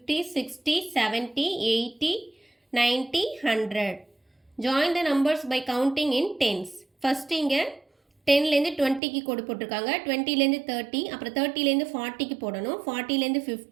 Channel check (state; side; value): drops out; left; at 9.0 s